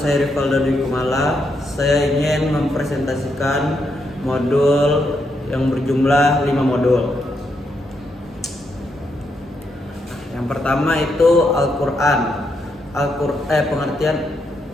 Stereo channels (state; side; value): normal; both; correlation 0.80